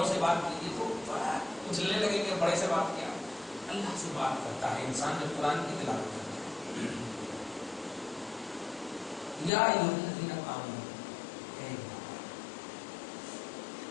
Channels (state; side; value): drops out; right; at 9.5 s